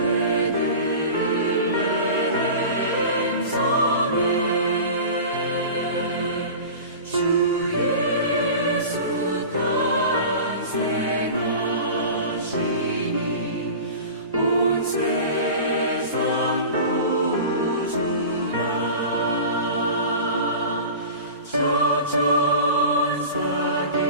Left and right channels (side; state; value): both; inverted; correlation -0.35